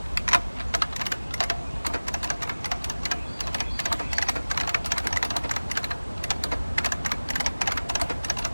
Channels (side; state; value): both; inverted; correlation -1.00